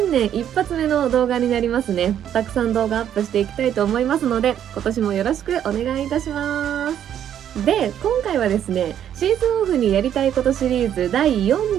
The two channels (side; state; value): left; quieter; 10.0 dB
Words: 年一発目の動画になりますね。たくさん動画アップしていきたいと思いますので、今年もよろしくお願いいたします。で、今回はですね、シーズンオフにやりたいことシリーズ第4